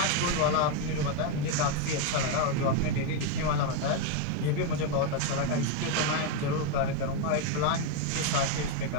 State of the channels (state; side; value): different; both; correlation 0.02